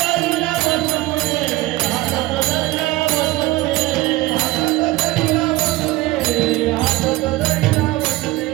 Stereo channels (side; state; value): left; quieter; 18.7 dB